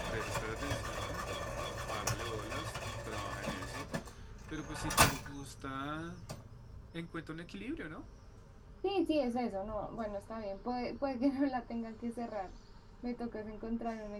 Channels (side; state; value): both; identical; correlation 1.00